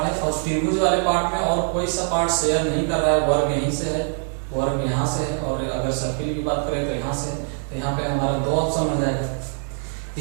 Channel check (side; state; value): left; silent; 56 dB below the other